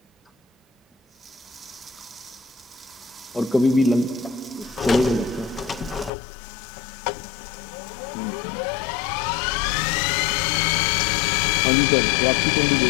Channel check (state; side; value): drops out; right; at 6.1 s